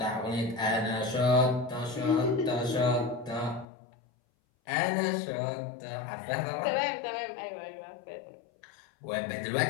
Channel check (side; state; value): right; drops out; at 3.7 s